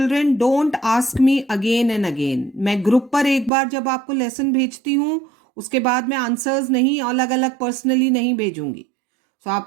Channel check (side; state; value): left; drops out; at 3.5 s